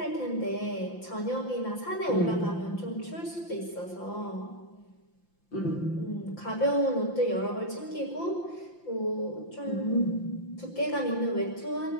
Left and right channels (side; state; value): right; late; 5.8 ms